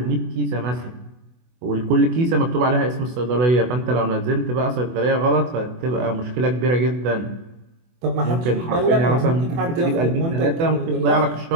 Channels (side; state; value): left; late; 24 ms